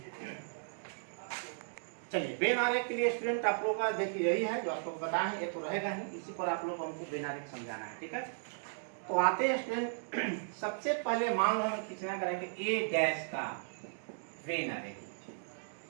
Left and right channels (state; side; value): silent; left; digital silence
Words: चलिए बेनारे के लिए स्टूडेंट आप लोगों का देखिए यही है जो आप लोग बताए हैं, ये तो रहेगा ही, इसी पर आप लोग को हमको बेनारे समझाना है, ठीक है। तो आते हैं स्टूडेंट, सबसे पहले मान लो हमें खींचना करेंगे ए डैश का बेनारे,